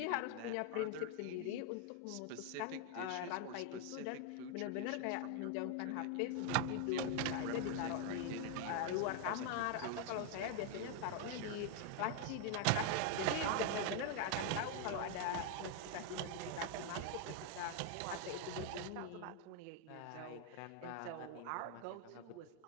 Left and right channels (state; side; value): different; both; correlation 0.00